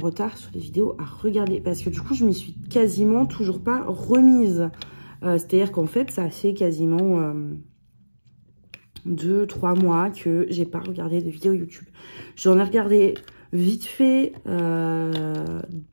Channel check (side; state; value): both; inverted; correlation -1.00